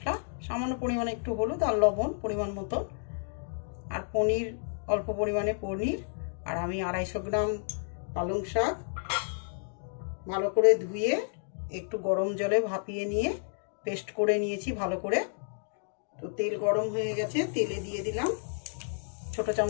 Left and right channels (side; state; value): right; silent; digital silence